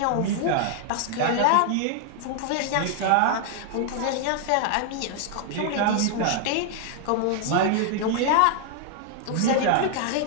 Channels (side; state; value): both; different; correlation 0.00